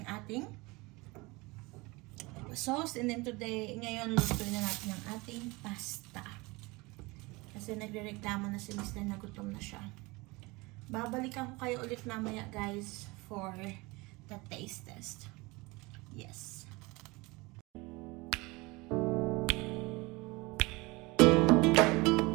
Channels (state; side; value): quieter; left; 24.1 dB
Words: ating sauce. And then today, ngayon, lutuin na natin ang ating pasta. Kasi nagre-reklamo na si Mr. na gutom na siya. Babalikan ko kayo ulit mamaya guys for the taste test. Yes.